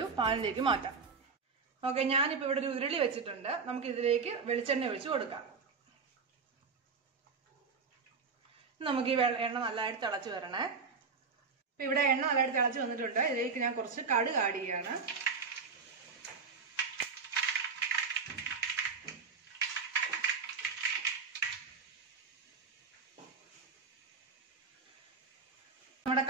പാനിലേക്ക് മാറ്റാം. ഓക്കെ, ഞാനിപ്പോ ഇവിടെ ഒരു ഉരുളി വെച്ചിട്ടുണ്ട്. നമുക്ക് ഇതിലേക്ക് വെളിച്ചെണ്ണ ഒഴിച്ച് കൊടുക്കാം. നമുക്ക് ഈ എണ്ണ നല്ലതായിട്ട് തിളച്ച് വരണേ. ഇപ്പൊ ഇവിടെ എണ്ണ നല്ലതായിട്ട് തിളച്ച് വന്നിട്ടുണ്ട്. ഇതിലേക്ക് ഞാൻ കുറച്ച് കടുക് ആഡ് ചെയ്യാണ്. നമ്മുടെ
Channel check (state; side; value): quieter; left; 5.0 dB